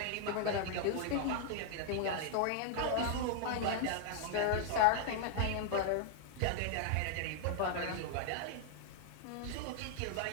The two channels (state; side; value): different; both; correlation 0.00